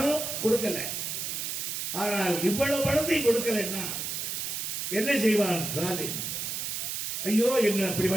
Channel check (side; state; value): right; noise; hiss, 3 dB below the sound